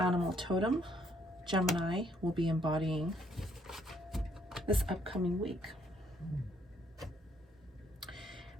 totem Gemini will be embodying this upcoming week.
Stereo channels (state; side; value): normal; both; correlation 0.69